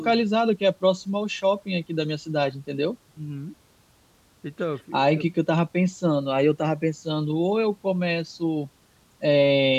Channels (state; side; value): identical; both; correlation 1.00